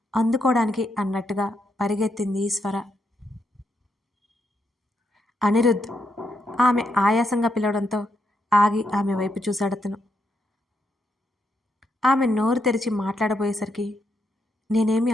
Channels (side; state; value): both; normal; correlation 0.80